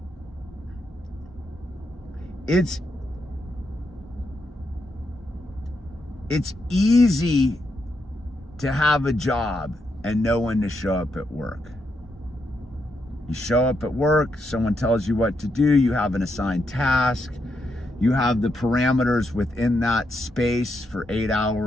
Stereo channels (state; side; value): normal; both; correlation 0.81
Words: it's easy to have a job and know when to show up at work. You show up at work, someone tells you what to do, you have an assigned task, you have the parameters within that space for 8